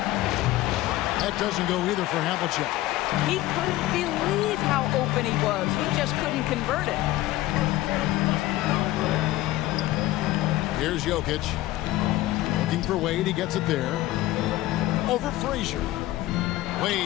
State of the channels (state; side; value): quieter; right; 16.3 dB